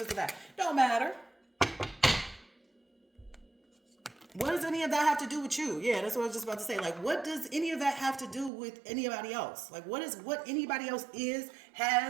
a that. Don't matter. What does any of that have to do with you? Yeah, that's what I was just about to say. Like, what does any of that have to do with anybody else? Like, what anybody else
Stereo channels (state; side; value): drops out; left; at 8.5 s